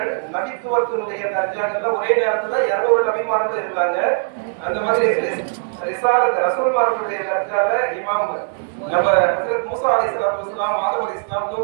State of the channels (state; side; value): silent; left; 66 dB below the other